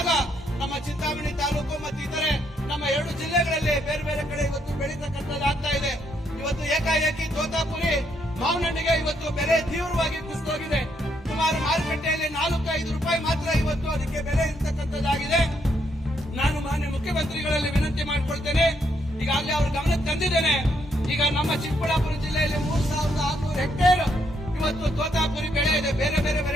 ನಮ್ಮ ಚಿಂತಾಮಣಿ ತಾಲೂಕು ಮತ್ತು ಇತರೆ ನಮ್ಮ 2 ಜಿಲ್ಲೆಗಳಲ್ಲಿ ಬೇರೆ ಬೇರೆ ಕಡೆ ಇವತ್ತು ಬೆಳೀತಕ್ಕಂಥದ್ದಾಗ್ತಾ ಇದೆ. ಇವತ್ತು ಏಕಾಏಕಿ ತೋತಾಪುರಿ ಮಾವಿನಹಣ್ಣಿಗೆ ಇವತ್ತು ಬೆಲೆ ತೀವ್ರವಾಗಿ ಕುಸಿದೋಗಿದೆ. ಸುಮಾರು ಮಾರುಕಟ್ಟೆಯಲ್ಲಿ 4-5 ರೂಪಾಯಿ ಮಾತ್ರ ಇವತ್ತು ಅದಕ್ಕೆ ಬೆಲೆ ಇರ್ತಕ್ಕಂಥದ್ದಾಗಿದೆ. ನಾನು ಮಾನ್ಯ ಮುಖ್ಯಮಂತ್ರಿಗಳಲ್ಲಿ ವಿನಂತಿ ಮಾಡಿಕೊಳ್ತೇನೆ, ಈಗಾಗಲೇ ಅವ್ರ ಗಮನಕ್ಕೆ ತಂದಿದ್ದೇನೆ. ಈಗ ನಮ್ಮ ಚಿಕ್ಕಬಳ್ಳಾಪುರ ಜಿಲ್ಲೆಯಲ್ಲಿ 3600 ಹೆಕ್ಟೇರ್ ಇವತ್ತು ತೋತಾಪುರಿ ಬೆಳೆ ಇದೆ. ಬೇರೆ ಬೇರೆ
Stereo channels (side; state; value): both; normal; correlation 0.74